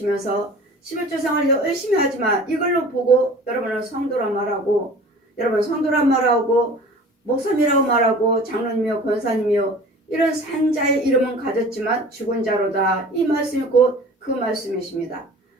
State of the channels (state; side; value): normal; both; correlation 0.43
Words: 11조 생활 열심히 하지만 이걸로 보고 여러분은 성도란 말하고 여러분 성도란 말하고 목사님이라고 말하고 장로님이요 권사님이요 이런 산자의 이름은 가졌지만 죽은 자로다. 이 말씀이 곧 그 말씀이십니다.